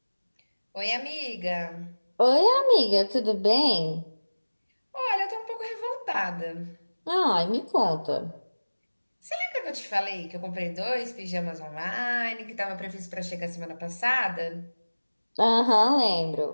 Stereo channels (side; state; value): both; inverted; correlation -1.00